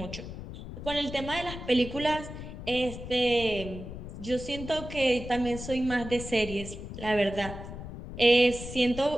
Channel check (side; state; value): left; noise; rumble, 10 dB below the sound